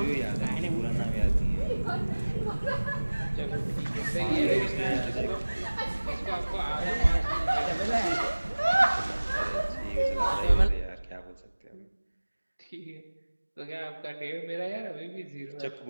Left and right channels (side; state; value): both; inverted; correlation -1.00